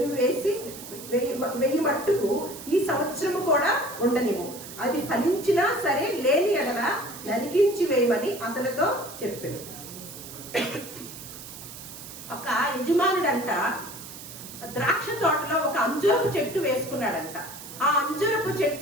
వేసి మట్టుకు ఈ సంవత్సరము కూడా ఉండనివ్వు, అది ఫలించినా సరే, లేని ఎడల నరికించి వేయమని అతనితో చెప్పాను. ఒక యజమానుడంట ద్రాక్ష తోటలో ఒక అంజూరపు చెట్టు వేసుకున్నాడంట. ఆ అంజూరపు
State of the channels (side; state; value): right; noise; hiss, 13 dB below the sound